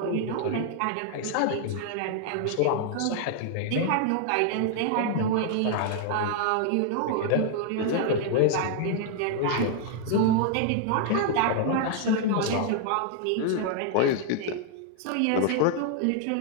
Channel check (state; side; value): different; both; correlation 0.00